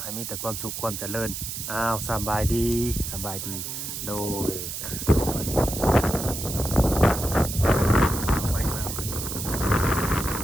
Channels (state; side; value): noise; right; hiss, 6 dB below the sound